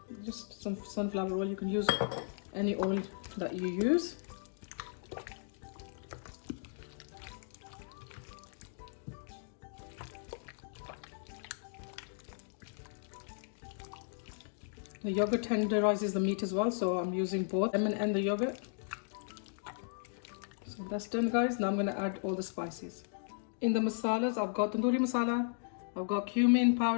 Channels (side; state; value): right; silent; digital silence